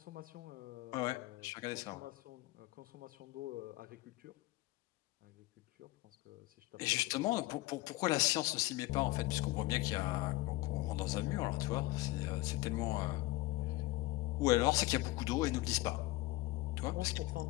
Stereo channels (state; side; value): quieter; right; 19.6 dB